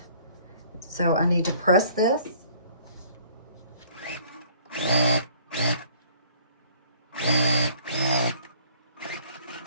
So I need to press this.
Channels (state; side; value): inverted; both; correlation -0.56